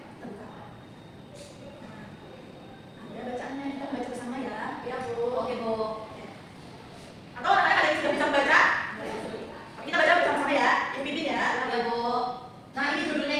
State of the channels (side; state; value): both; identical; correlation 1.00